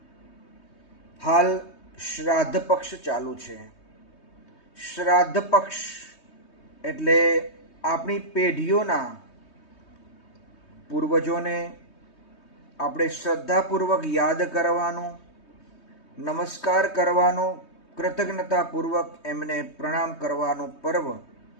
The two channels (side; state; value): right; late; 3.2 ms